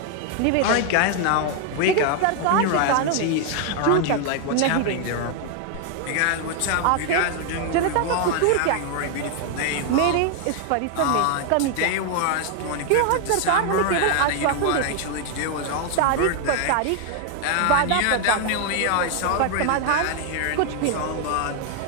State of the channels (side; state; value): both; different; correlation 0.00